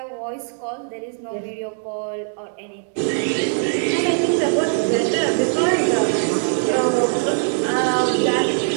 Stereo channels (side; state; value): left; silent; 65 dB below the other